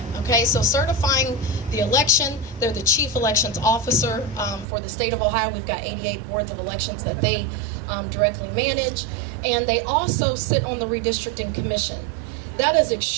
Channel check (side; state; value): left; drops out; at 4.7 s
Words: Okay, so certifying the election, they're the chief elections officer for the state of Ohio. We've got 88 boards of elections that they directly manage, and they also sit on the redistricting commission. That is